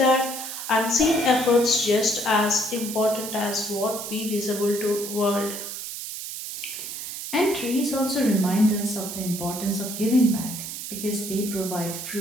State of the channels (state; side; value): noise; right; hiss, 7 dB below the sound